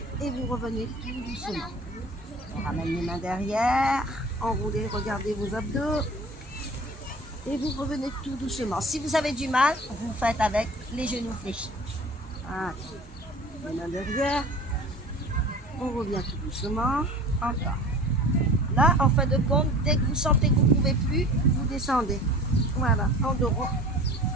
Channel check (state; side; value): normal; both; correlation 0.41